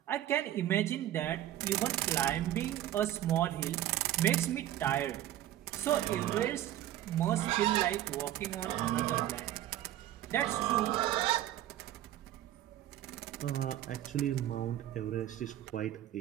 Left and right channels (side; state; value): left; quieter; 13.0 dB